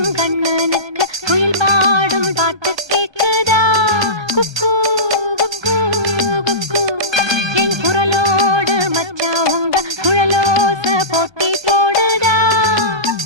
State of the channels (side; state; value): left; late; 1.2 ms